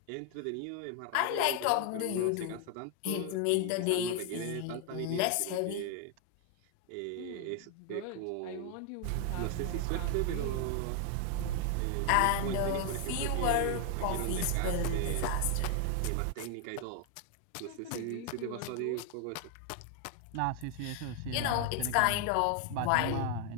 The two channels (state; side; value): different; both; correlation 0.00